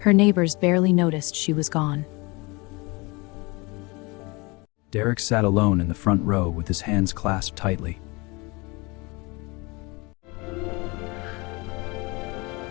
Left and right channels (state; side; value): quieter; right; 26.2 dB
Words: neighbors barely noticed she was gone. Derek sat alone in the front row with his hands clasped tightly.